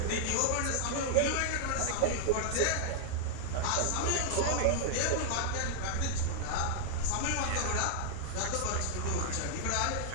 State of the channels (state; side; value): different; both; correlation -0.01